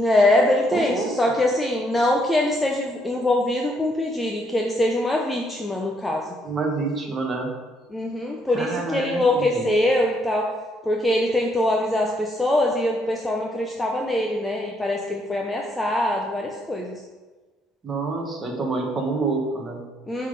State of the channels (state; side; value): normal; both; correlation 0.72